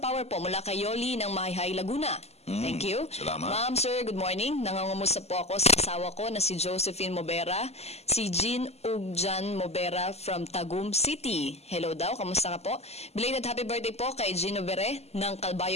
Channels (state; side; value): late; right; 0.30 ms